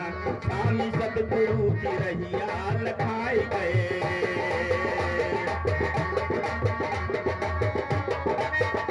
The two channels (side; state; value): both; identical; correlation 1.00